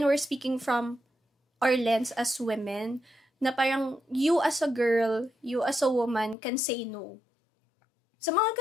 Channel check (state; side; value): drops out; right; at 6.4 s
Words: we're speaking from our lens as women, na parang you as a girl, you as a woman can say no. Sa mga